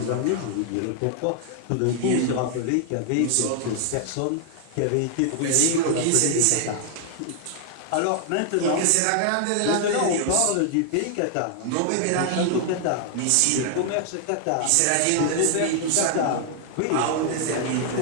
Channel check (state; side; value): different; both; correlation 0.00